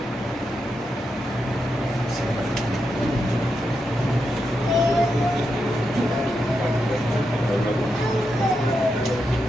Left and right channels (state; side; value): normal; both; correlation 0.85